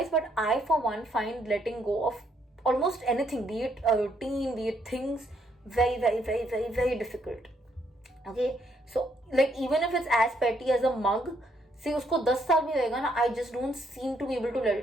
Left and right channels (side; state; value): both; normal; correlation 0.72